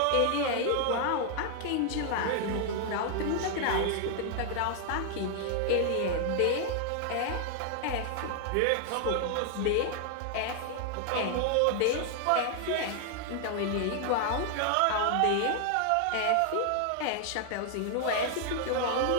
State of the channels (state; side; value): different; both; correlation 0.00